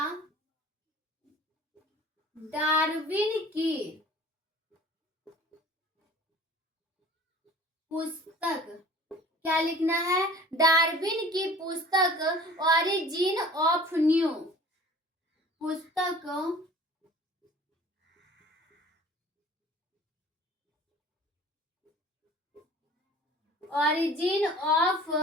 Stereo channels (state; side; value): normal; both; correlation 0.46